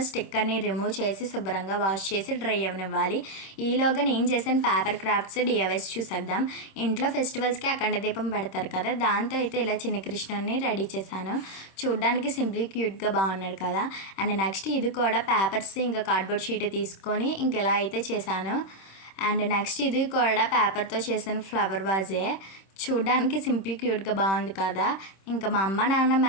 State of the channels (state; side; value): late; right; 26 ms